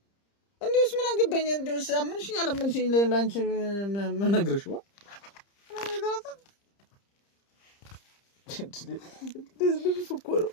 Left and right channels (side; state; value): right; late; 30 ms